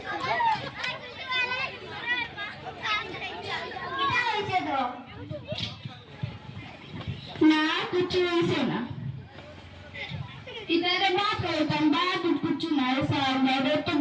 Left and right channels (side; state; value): both; identical; correlation 1.00